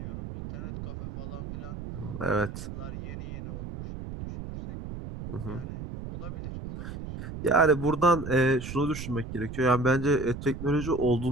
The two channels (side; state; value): right; noise; rumble, 9 dB below the sound